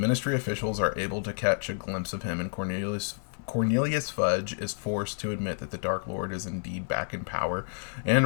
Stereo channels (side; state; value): right; silent; digital silence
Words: officials are able to catch a glimpse of him, and Cornelius Fudge is forced to admit that the Dark Lord is indeed back in power